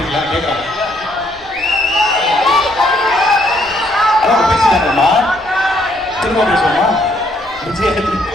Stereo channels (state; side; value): noise; left; rumble, 24 dB below the sound